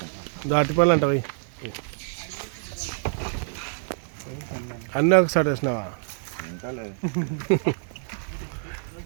దాటిపల్లి అంటవి అన్నీ ఒకసారి వేసినావా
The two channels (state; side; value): silent; left; digital silence